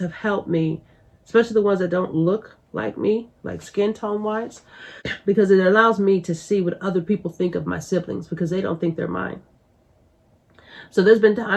helped me, especially the ones that don't look like me, like skin tone wise, because it allows me to see what other people think of my siblings, because they don't think they're mine. So there's been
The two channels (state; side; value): identical; both; correlation 1.00